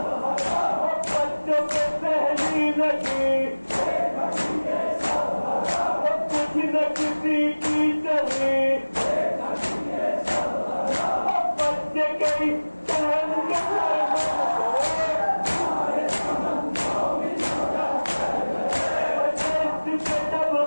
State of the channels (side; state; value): both; inverted; correlation -1.00